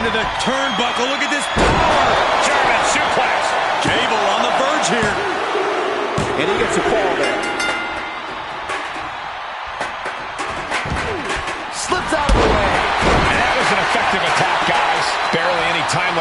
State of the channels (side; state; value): both; identical; correlation 1.00